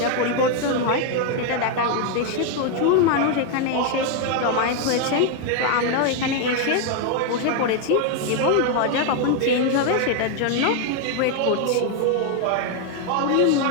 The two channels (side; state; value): both; different; correlation 0.01